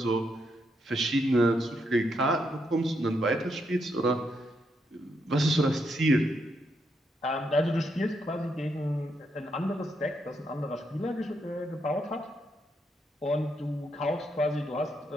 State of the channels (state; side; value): normal; both; correlation 0.79